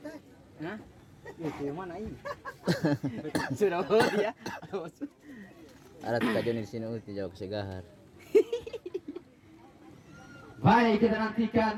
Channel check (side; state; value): both; identical; correlation 1.00